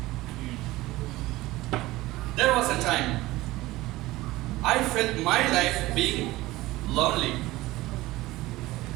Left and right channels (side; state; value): left; quieter; 18.4 dB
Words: There was a time I felt my life being lonely.